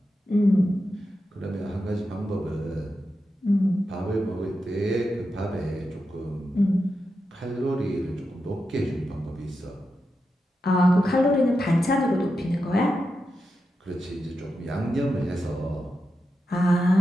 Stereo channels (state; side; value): normal; both; correlation 0.88